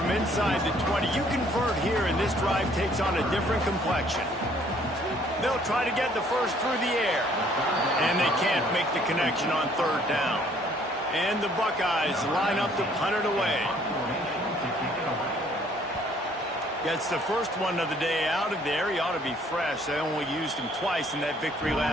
inside the 20. You convert here, and this drive takes on a different complexion. They'll try to get the first through the air. And they can't make the connection on 3rd down. And the Buckeyes line up to punt it away. Gets the first one of the day out of there. He ought to be fresh. They only used him twice in that victory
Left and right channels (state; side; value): normal; both; correlation 0.61